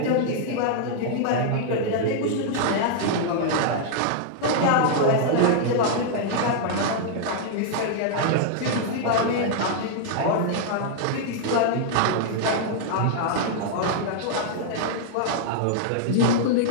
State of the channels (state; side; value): different; both; correlation -0.01